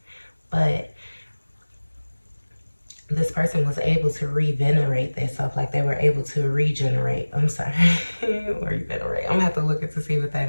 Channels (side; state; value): both; inverted; correlation -1.00